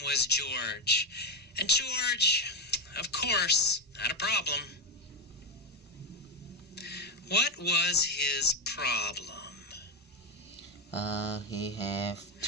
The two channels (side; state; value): both; normal; correlation 0.10